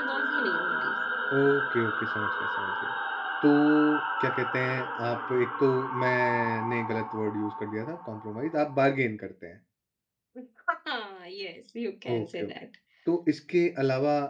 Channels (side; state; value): both; identical; correlation 1.00